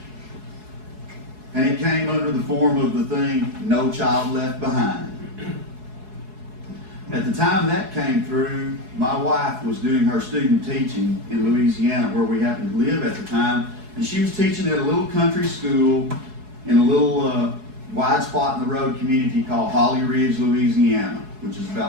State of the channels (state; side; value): late; left; 4.7 ms